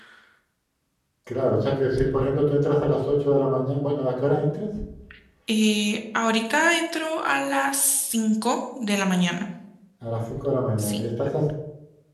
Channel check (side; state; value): both; identical; correlation 1.00